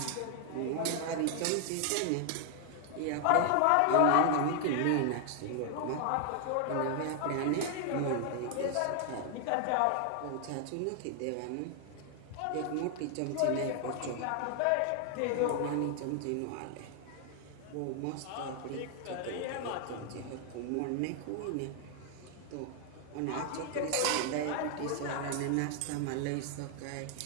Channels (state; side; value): different; both; correlation 0.00